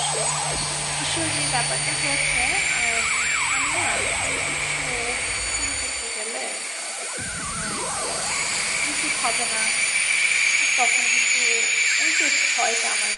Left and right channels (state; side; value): identical; both; correlation 1.00